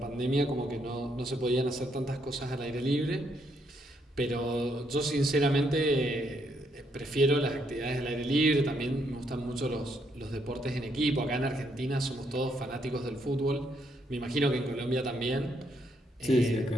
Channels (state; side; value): normal; both; correlation 0.75